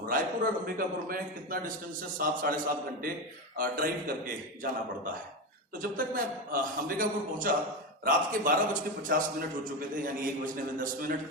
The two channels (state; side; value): normal; both; correlation 0.16